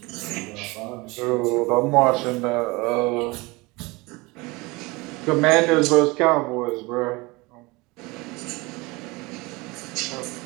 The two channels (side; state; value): left; quieter; 24.2 dB